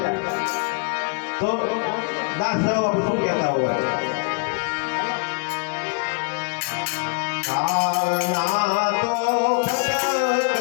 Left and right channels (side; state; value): right; quieter; 34.5 dB